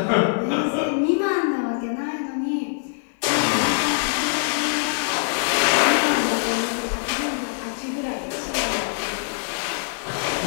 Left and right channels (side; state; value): right; silent; digital silence